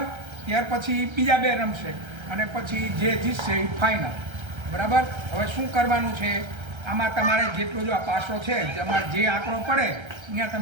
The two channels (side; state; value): left; late; 1.3 ms